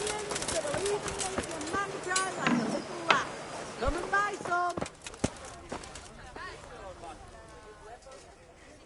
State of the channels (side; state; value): both; identical; correlation 1.00